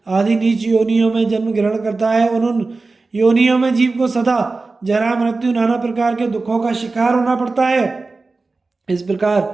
आदि नीच योनियों में जन्म ग्रहण करता है। उन योनियों में जीव को सदा जरा, मृत्यु, नाना प्रकार के दुखों का शिकार होना पड़ता है। इस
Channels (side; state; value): left; quieter; 3.7 dB